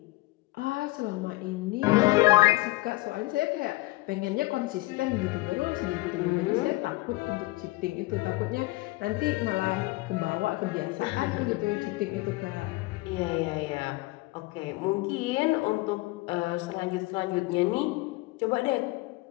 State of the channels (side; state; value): right; quieter; 20.9 dB